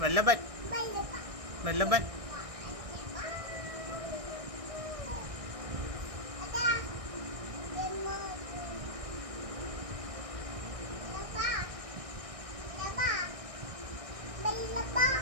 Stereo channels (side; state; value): left; late; 1.6 ms